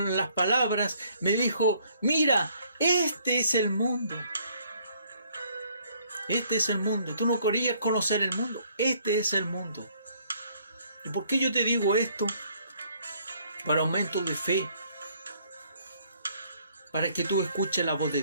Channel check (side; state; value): both; inverted; correlation -0.64